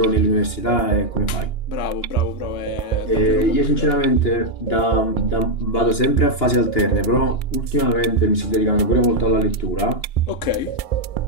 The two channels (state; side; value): late; right; 2.9 ms